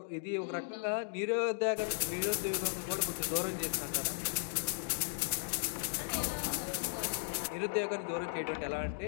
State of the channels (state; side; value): silent; right; digital silence